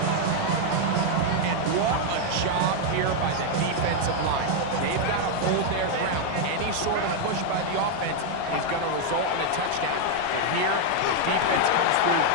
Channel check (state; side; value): different; both; correlation 0.00